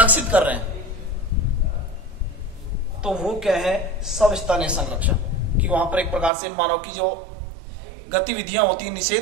कर रहे हैं, तो वो क्या है? सवस्थानीय संरक्षण। कि वहां पर एक प्रकार से मानव की जो गतिविधियां होती हैं,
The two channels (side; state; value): left; drops out; at 6.3 s